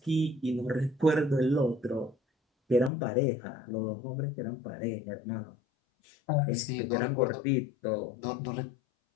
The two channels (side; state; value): right; drops out; at 2.9 s